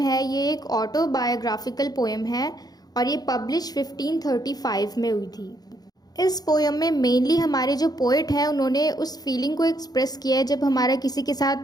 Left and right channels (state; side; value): late; right; 0.19 ms